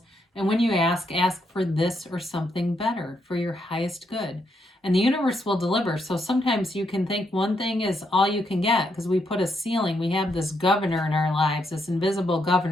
and when you ask for this or something better for your highest good. And the universe will deliver. So sometimes you can think one thing is all you can get, because we put a ceiling. We have this governor in our lives, this invisible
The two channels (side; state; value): both; normal; correlation 0.78